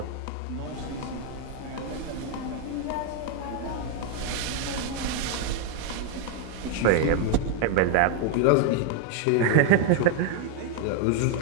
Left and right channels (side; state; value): both; different; correlation 0.01